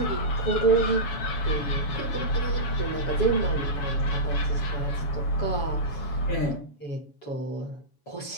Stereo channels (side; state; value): right; late; 7.1 ms